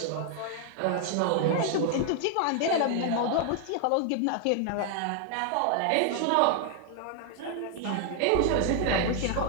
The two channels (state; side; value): different; both; correlation 0.00